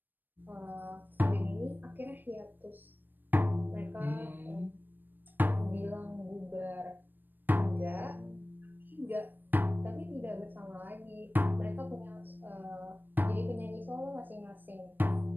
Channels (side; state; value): left; late; 0.092 ms